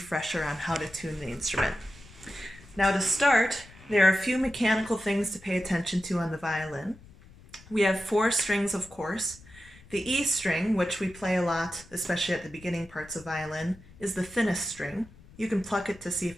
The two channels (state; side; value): noise; left; rumble, 22 dB below the sound